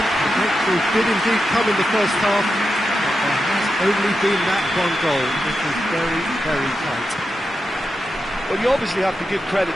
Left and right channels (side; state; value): both; normal; correlation 0.88